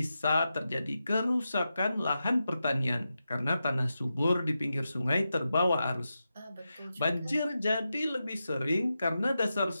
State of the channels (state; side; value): inverted; both; correlation -0.90